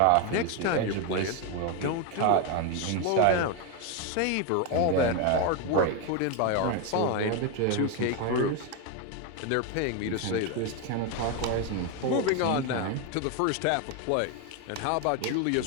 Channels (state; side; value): different; both; correlation 0.02